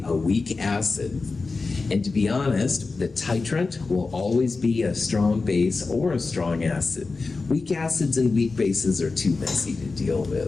a weak acid. And to be honest, the titrant will always be a strong base or a strong acid. Weak acids and weak bases are too messy to deal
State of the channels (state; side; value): quieter; right; 4.0 dB